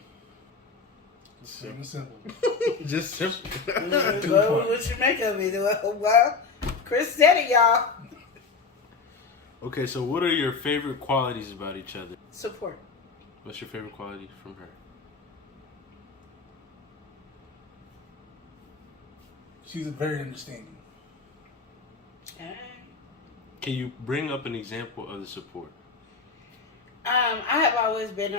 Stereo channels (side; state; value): right; quieter; 4.7 dB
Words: It's plain and simple. Just simple. What you make of it? Well, Chris said it, y'all. Okay, so what are your favorite qualities about each other? Support. What's your favorite quality from her? She's very understanding. Can you bring up an example of the support? I have always been